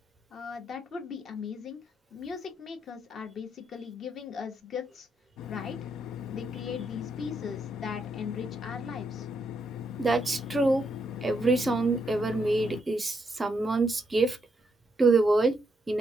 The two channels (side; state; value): both; normal; correlation 0.78